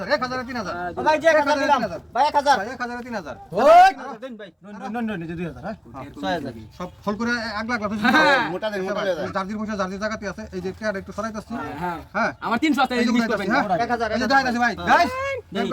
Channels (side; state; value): both; identical; correlation 1.00